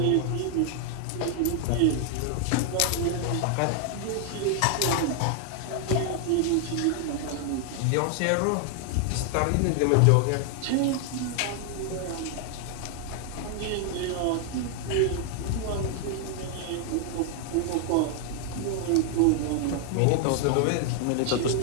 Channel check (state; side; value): different; both; correlation 0.00